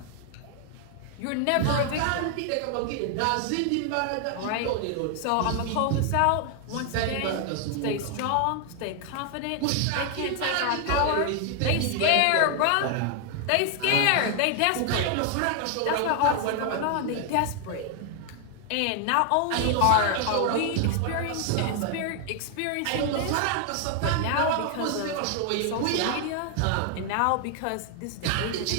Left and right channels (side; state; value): both; different; correlation 0.00